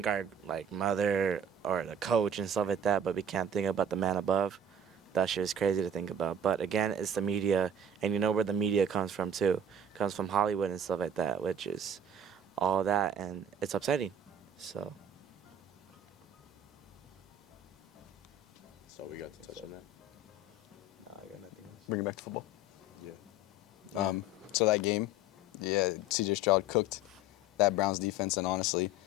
our, like, mother or the coach and stuff like that, but we can't think about the man above, that shit is crazy to think about. But, again, it's the media, and you know where the media comes from, too. It comes from Hollywood and stuff like that, which is all that, and it's upsetting, so... So we got to touch on that. I got nothing else. Bring it back to football. Yeah. So that game, yeah, CJ Stroud cooked that Browns defense, and honestly,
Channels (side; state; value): both; normal; correlation 0.44